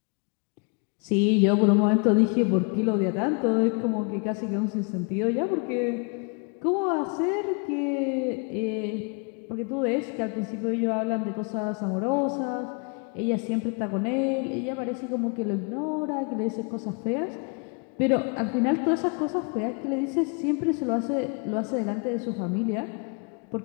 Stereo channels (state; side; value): quieter; right; 35.3 dB